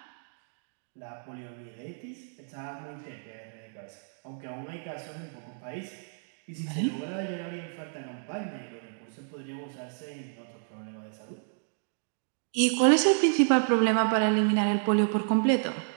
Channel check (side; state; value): left; silent; digital silence